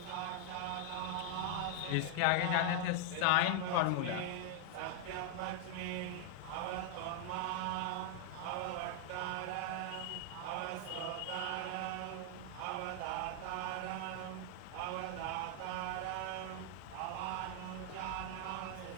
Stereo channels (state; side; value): different; both; correlation 0.00